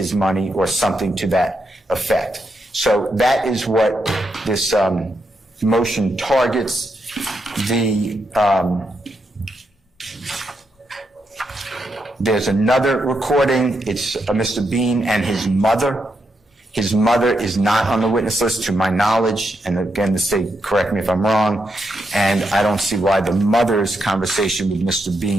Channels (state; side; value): normal; both; correlation 0.81